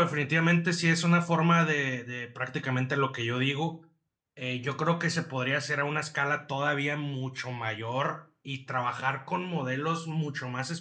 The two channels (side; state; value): both; identical; correlation 1.00